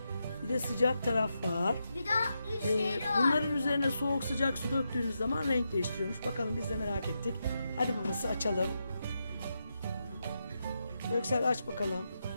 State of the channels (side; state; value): both; inverted; correlation -0.85